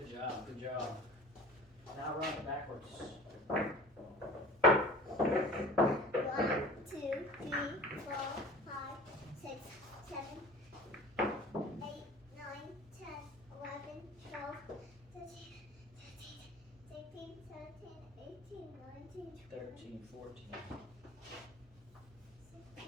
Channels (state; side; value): normal; both; correlation 0.41